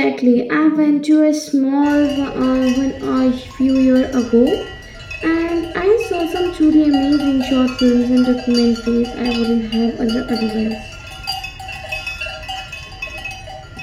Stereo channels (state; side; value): identical; both; correlation 1.00